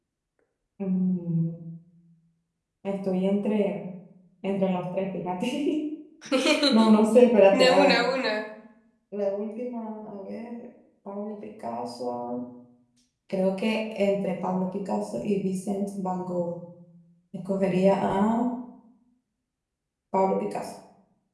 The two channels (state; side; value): identical; both; correlation 1.00